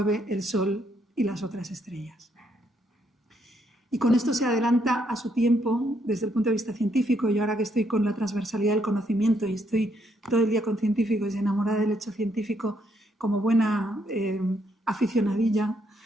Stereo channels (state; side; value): normal; both; correlation 0.74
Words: el sol y las otras estrellas. Y con esto se adelanta a su tiempo desde el punto de vista científico. Yo ahora que estoy con la transversalidad del conocimiento y estoy todo el día con científicos y enamorada del hecho científico como buena aficionadilla